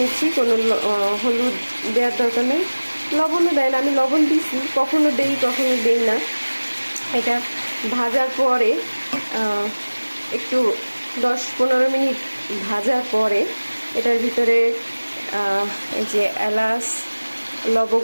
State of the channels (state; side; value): inverted; both; correlation -1.00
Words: নিচ্ছি, কোনো হলুদ দেওয়ার দরকার নেই, লবণও দেয় না। আমি লবণ দিচ্ছি, কখনো দেই না। এটা ভাজার পরে একটু 10-15 মিনিট ভাজার পরে এটার ভিতরে এই যে এলাচ,